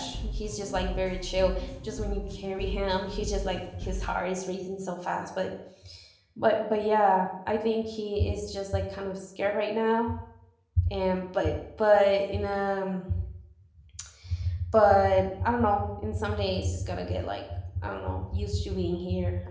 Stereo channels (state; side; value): identical; both; correlation 1.00